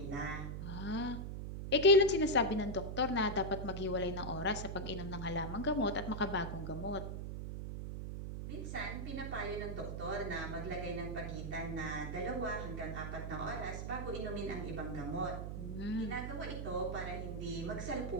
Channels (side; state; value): right; noise; hum, 5 dB below the sound